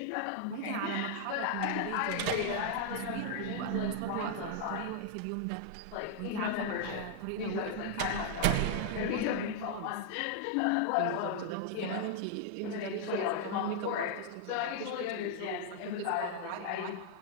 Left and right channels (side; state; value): both; different; correlation 0.00